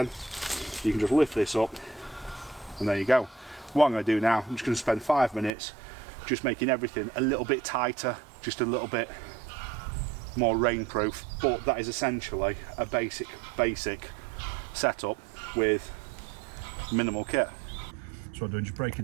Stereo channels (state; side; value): drops out; left; at 5.5 s